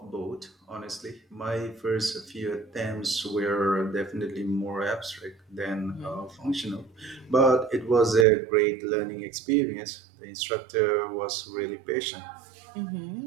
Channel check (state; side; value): drops out; left; at 8.2 s